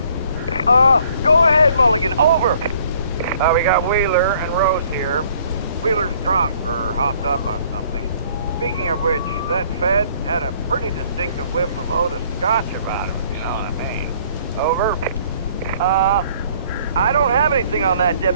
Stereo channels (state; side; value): inverted; both; correlation -0.60